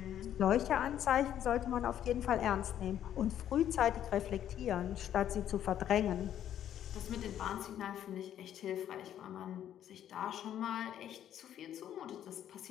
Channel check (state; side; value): quieter; right; 10.7 dB